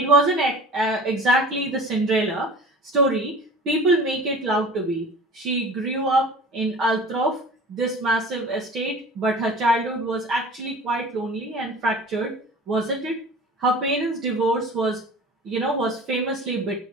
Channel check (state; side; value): normal; both; correlation 0.41